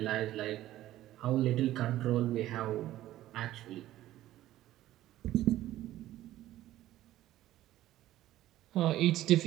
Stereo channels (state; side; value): quieter; left; 14.4 dB